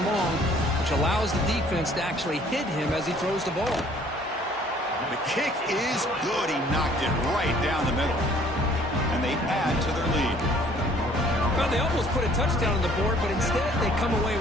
long, which allows the defense to actually hit him as he throws the ball. The kick is good. He knocked it right down the middle. And they add to their lead. Well, they almost put a touchdown on the board, but instead they come away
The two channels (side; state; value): both; normal; correlation 0.57